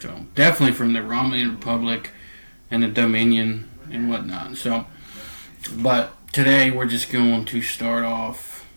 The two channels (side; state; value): both; inverted; correlation -1.00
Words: definitely from the Romulan Republic and the Dominion and whatnot. So, but today we're just going to start off